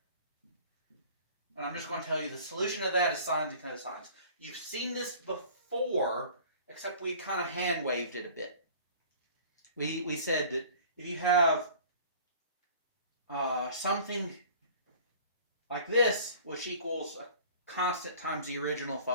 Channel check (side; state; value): both; inverted; correlation -0.46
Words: And I'm just going to tell you the solution of that is sines and cosines. You've seen this before, except we kind of hand waved it a bit. We said that if you have something like this, which equals a constant times the original